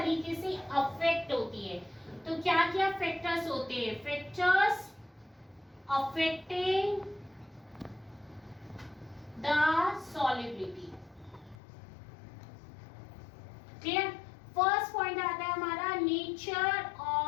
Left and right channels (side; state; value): right; drops out; at 11.6 s